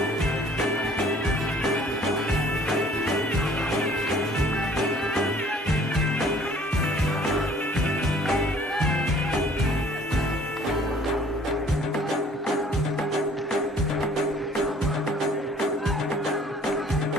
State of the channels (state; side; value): normal; both; correlation 0.55